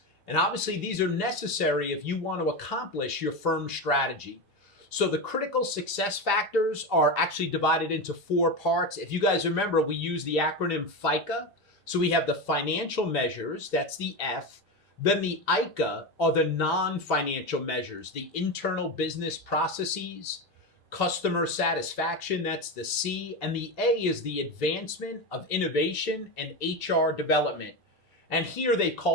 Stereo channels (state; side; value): normal; both; correlation 0.17